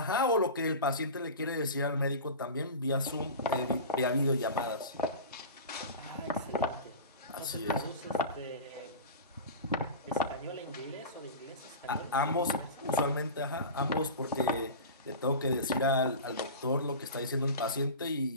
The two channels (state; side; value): inverted; both; correlation -0.31